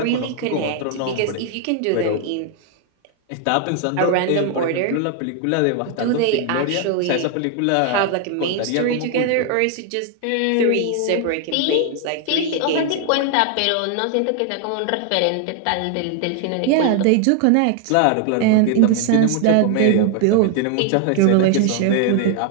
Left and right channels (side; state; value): both; different; correlation 0.00